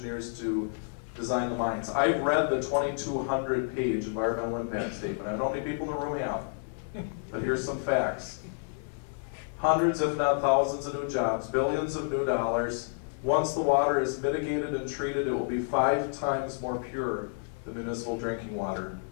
to design the mines. I've read the 2,200-page environmental impact statement. I don't know how many people in the room have, but here's some facts. Hundreds, if not thousands, of new jobs, billions of new dollars. Once the water is mitigated and treated, it will be 5 times more pure than municipal drinking water.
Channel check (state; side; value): silent; right; digital silence